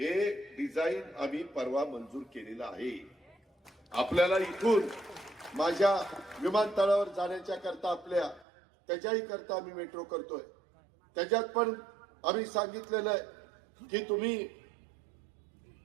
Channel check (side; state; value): left; drops out; at 8.5 s